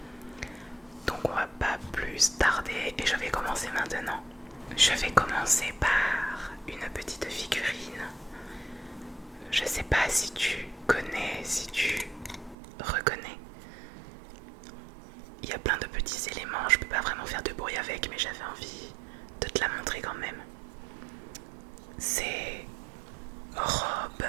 Donc on va pas plus tarder et je vais commencer maintenant. Je vais commencer par une petite figurine. Je sais pas si tu connais, si tu reconnais. Il y a plein de petits éléments, je peux pas vraiment faire de bruit avec, mais j'avais envie de te la montrer quand même. C'est Rob.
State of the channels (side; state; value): left; drops out; at 12.6 s